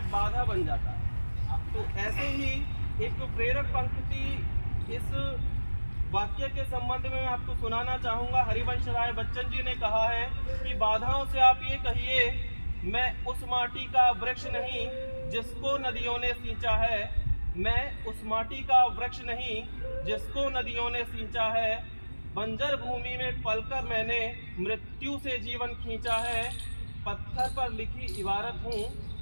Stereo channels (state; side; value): inverted; both; correlation -1.00